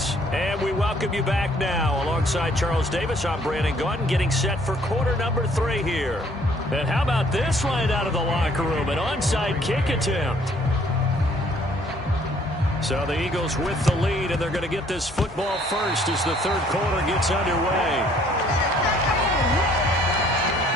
And we welcome you back now. Alongside Charles Davis, I'm Brandon Gaudin, getting set for quarter number 3 here. And how about this right out of the locker room? An onside kick attempt. So the Eagles with the lead, and they're going to get this football first as the third quarter gets underway.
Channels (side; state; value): both; normal; correlation 0.61